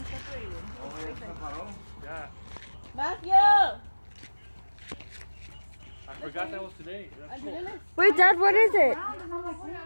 Yeah. Matthew! I forgot that was today. That's cool. Wait, Dad, what is it?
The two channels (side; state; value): both; inverted; correlation -1.00